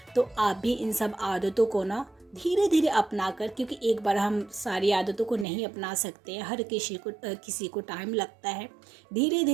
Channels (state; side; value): drops out; left; at 5.5 s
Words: तो आप भी इन सब आदतों को ना धीरे धीरे अपना कर, क्योंकि एक बार हम सारी आदतों को नहीं अपना सकते हैं, हर किसी को टाइम लगता है। धीरे